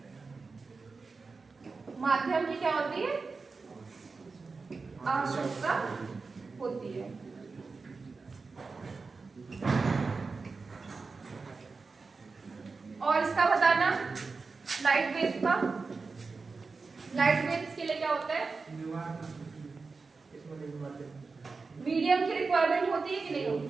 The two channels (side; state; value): left; quieter; 4.3 dB